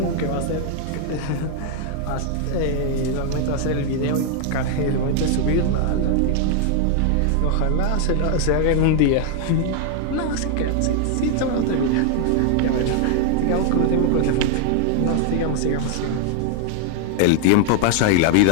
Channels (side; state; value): both; different; correlation 0.00